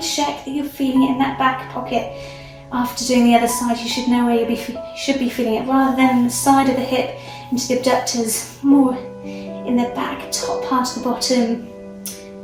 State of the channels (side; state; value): both; identical; correlation 1.00